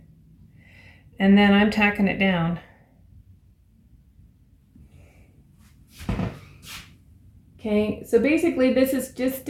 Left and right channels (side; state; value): both; identical; correlation 1.00